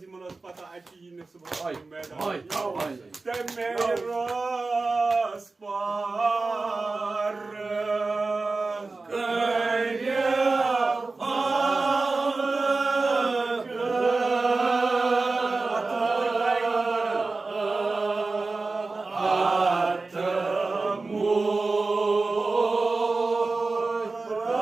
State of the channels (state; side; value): quieter; left; 3.7 dB